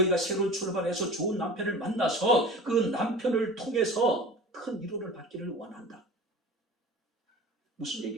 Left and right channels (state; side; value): normal; both; correlation 0.37